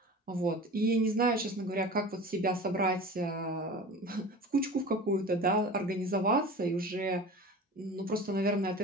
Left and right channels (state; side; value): normal; both; correlation 0.36